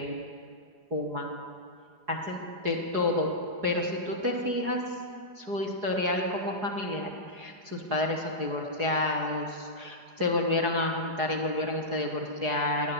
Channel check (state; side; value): late; left; 4.8 ms